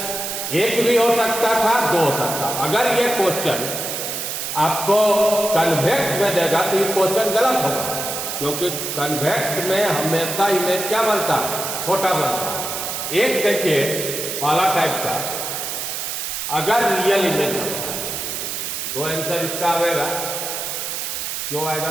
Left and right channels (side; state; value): right; noise; hiss, 4 dB below the sound